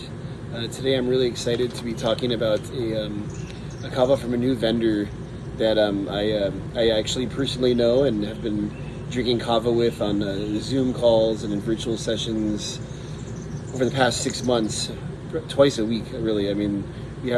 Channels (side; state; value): both; identical; correlation 1.00